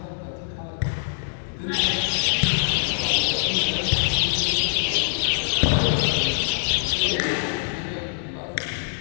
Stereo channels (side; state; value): right; silent; digital silence